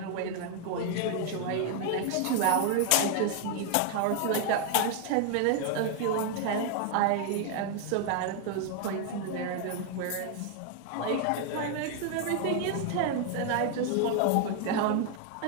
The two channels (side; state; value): both; different; correlation 0.00